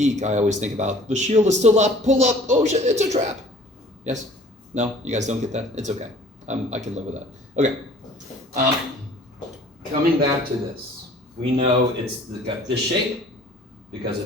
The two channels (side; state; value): both; normal; correlation 0.51